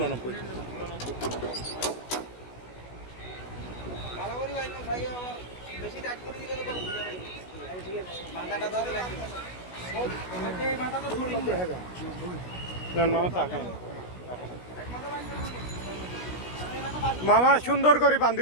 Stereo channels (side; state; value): right; late; 16 ms